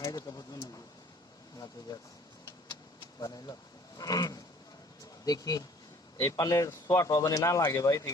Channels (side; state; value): both; normal; correlation 0.54